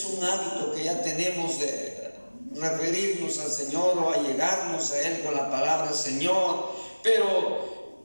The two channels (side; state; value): both; inverted; correlation -1.00